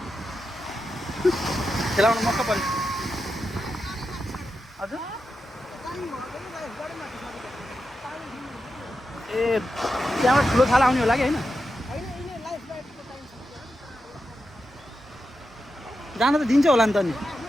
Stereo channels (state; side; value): normal; both; correlation 0.88